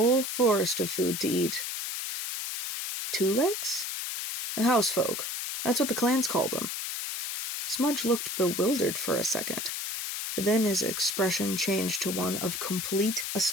forest of food to eat. Two legs? Housefolk. That's what the clans called them. Smudge looked bewildered for a second. Then his expression changed to one of complete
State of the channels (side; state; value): left; noise; hiss, 4 dB below the sound